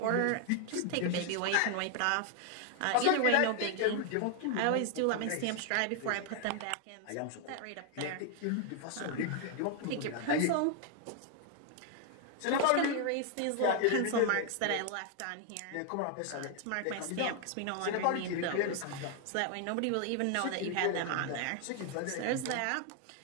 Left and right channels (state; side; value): different; both; correlation 0.00